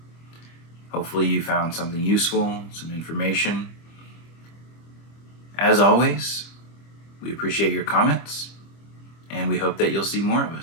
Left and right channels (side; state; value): right; late; 25 ms